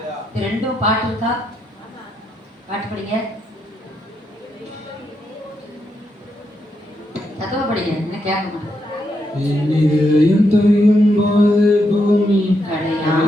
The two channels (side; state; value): both; normal; correlation 0.81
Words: இது ரெண்டும் பாட்டு இருக்கா? பாட்டு படிங்க. சத்தமா படிங்க, என்ன கேட்க மாட்டேன். என் இதயம் தொய்யும் போது பூமி